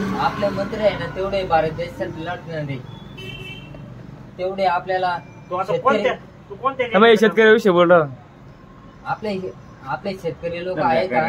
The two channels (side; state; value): both; identical; correlation 1.00